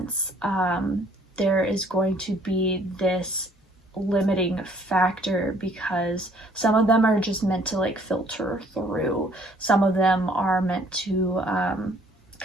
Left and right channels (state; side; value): normal; both; correlation 0.60